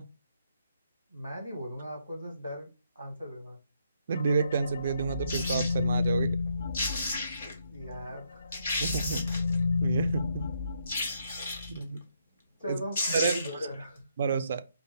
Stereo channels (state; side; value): inverted; both; correlation -0.75